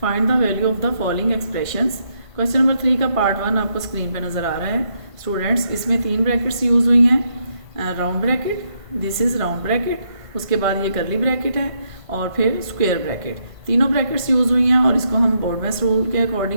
find the value of the following expressions. Question number 3 का part 1 आपको screen पे नज़र आ रहा है स्टूडेंट्स। इसमें 3 ब्रैकेट्स यूज़ हुई हैं, round bracket, this is round bracket, उसके बाद ये कर्ली ब्रैकेट है और फिर स्क्वायर ब्रैकेट। तीनों ब्रैकेट्स यूज़ हुई हैं और इसको हम बोर्डमैस रूल के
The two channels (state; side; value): late; left; 1.5 ms